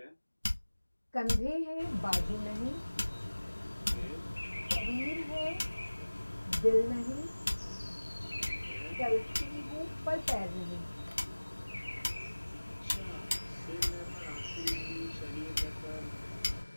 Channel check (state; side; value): inverted; both; correlation -1.00